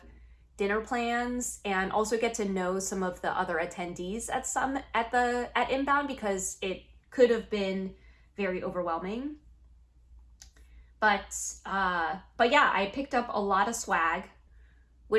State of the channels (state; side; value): identical; both; correlation 1.00